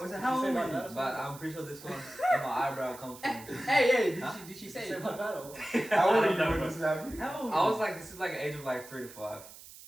was it how old were you? But I'm pretty sure this one where my eyebrow comes from. Hey, Huh? did she say Say it? my battle. How old are you know, when bro. this is happening? How old? I was like, this is like an age of like 3 to 5.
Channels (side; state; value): right; noise; hiss, 17 dB below the sound